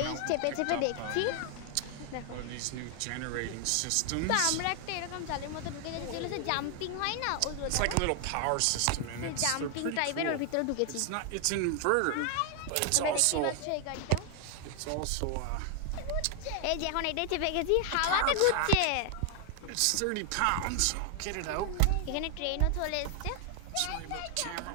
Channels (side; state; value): both; different; correlation 0.00